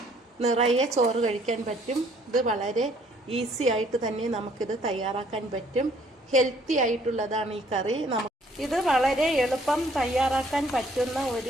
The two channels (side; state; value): both; normal; correlation 0.62